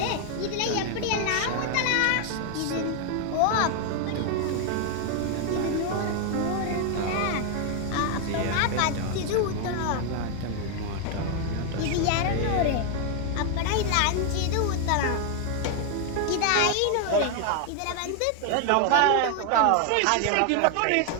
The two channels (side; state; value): both; different; correlation 0.00